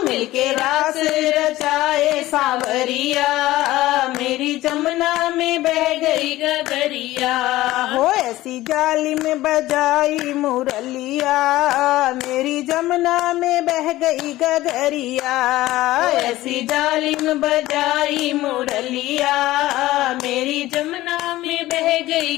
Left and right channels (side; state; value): right; quieter; 16.7 dB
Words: मिलके रास रचाए सांवरिया, मेरी जमुना में बह गई गगरिया। हो ऐसी जालिम बजाई मुरलिया, मेरी जमुना में बह गई गगरिया। ऐसी जालिम बजाई मुरलिया, मेरी जमुना में बह गई